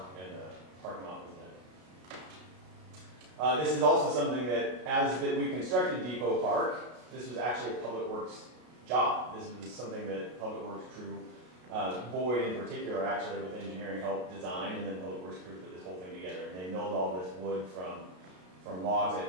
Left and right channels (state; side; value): late; left; 33 ms